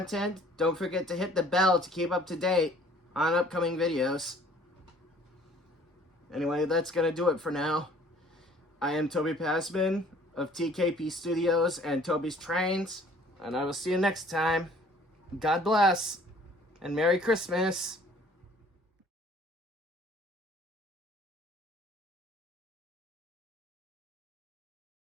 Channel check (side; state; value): both; normal; correlation 0.55